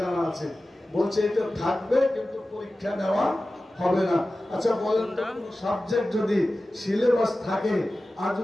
জানা আছে, বলছে এটা থাকবে কিন্তু পরীক্ষা নেওয়া হবে না। আচ্ছা বলেন তো, সাবজেক্ট যদি সিলেবাস থাকে আর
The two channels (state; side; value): normal; both; correlation 0.95